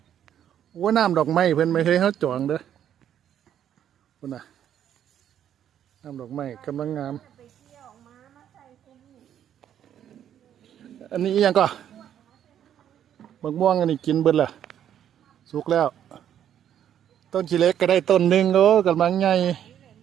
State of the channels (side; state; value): left; quieter; 10.0 dB